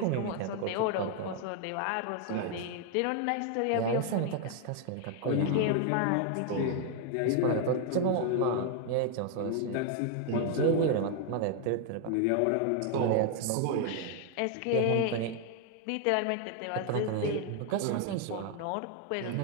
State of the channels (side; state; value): both; different; correlation 0.00